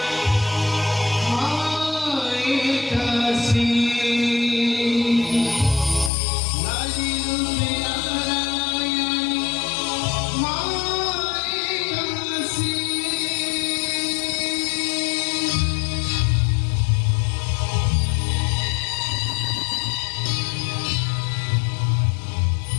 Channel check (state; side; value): drops out; right; at 6.1 s